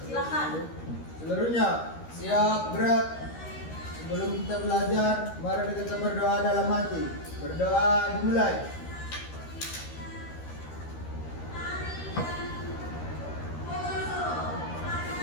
Silakan. Seluruhnya siap gerak. Sebelum kita belajar, mari kita berdoa dalam hati. Berdoa dimulai.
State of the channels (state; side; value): late; right; 13 ms